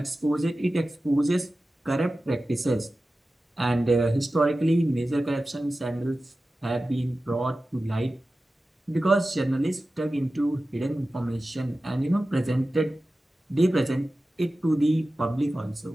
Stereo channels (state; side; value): normal; both; correlation 0.95